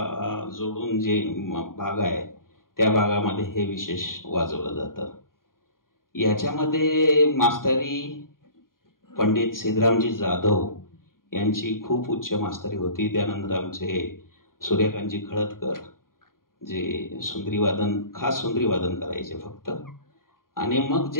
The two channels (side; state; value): right; late; 0.91 ms